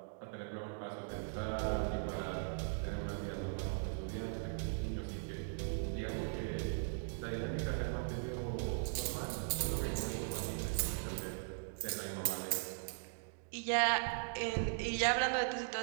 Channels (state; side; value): silent; left; digital silence